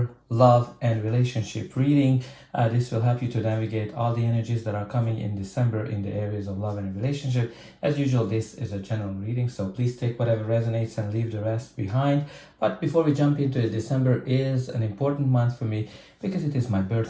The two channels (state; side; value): identical; both; correlation 1.00